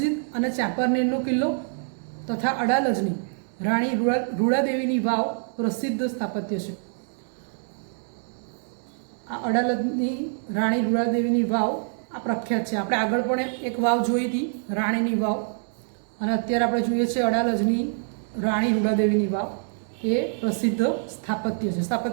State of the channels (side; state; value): left; silent; digital silence